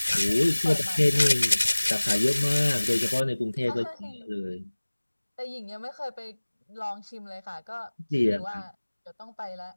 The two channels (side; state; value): both; inverted; correlation -1.00